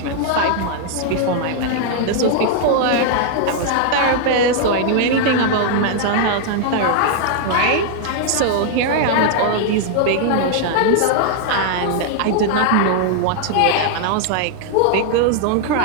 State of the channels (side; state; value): both; different; correlation -0.01